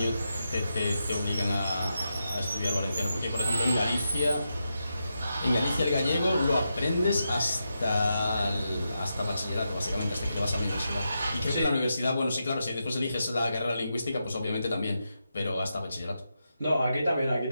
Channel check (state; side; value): inverted; both; correlation -0.87